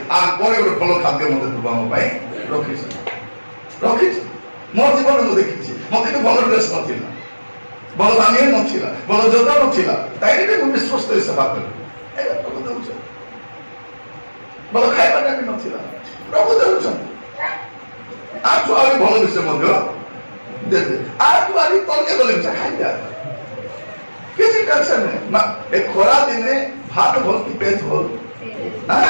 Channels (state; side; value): inverted; both; correlation -1.00